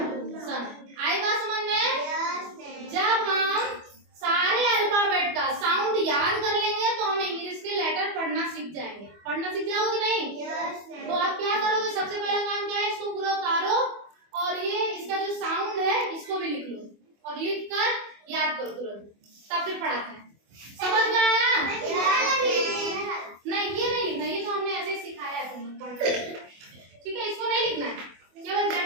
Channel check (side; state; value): left; late; 24 ms